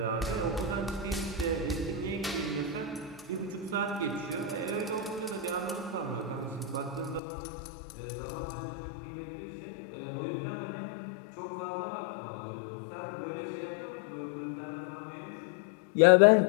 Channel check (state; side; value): drops out; right; at 7.2 s